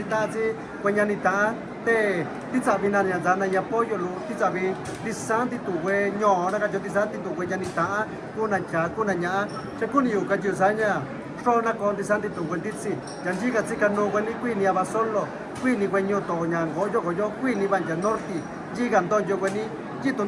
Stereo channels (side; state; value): both; identical; correlation 1.00